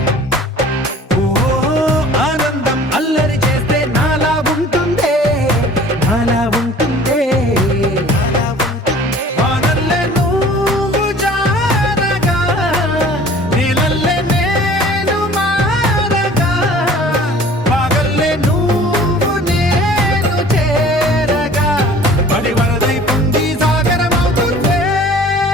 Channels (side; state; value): both; normal; correlation 0.48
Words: ఓ ఆనందం అల్లరి చేస్తే నాలా ఉంటుందే నాలా ఉంటుందే వానల్లే నువ్వు జారగా నీలల్లే నేను మారగా పగల్లే నువ్వు నేను చేరగా పడి వరదై పొంగి సాగరమవుతుందే